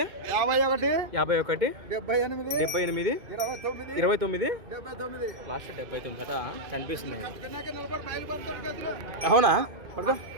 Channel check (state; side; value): late; left; 2.5 ms